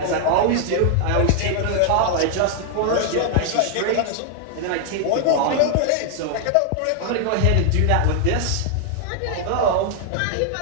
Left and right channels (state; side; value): different; both; correlation 0.00